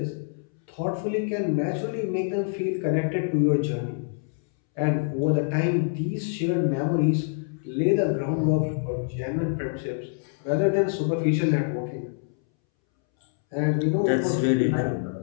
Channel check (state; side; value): silent; right; 61 dB below the other